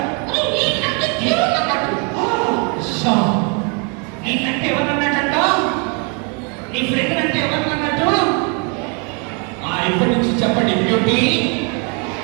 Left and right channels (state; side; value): quieter; left; 35.8 dB